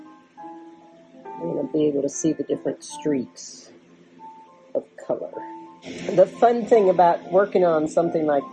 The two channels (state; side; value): identical; both; correlation 1.00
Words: You're going to be able to see the different streaks of color. The fun thing about working on something like